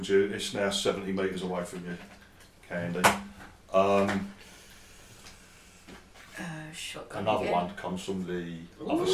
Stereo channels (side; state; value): both; identical; correlation 1.00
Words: you. It's now 70 metres away from you, Candy. Shotgun Another again. one comes from the other